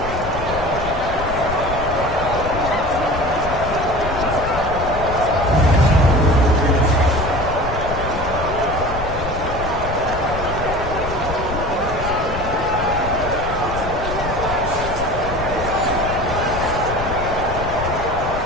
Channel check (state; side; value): noise; left; rumble, 7 dB below the sound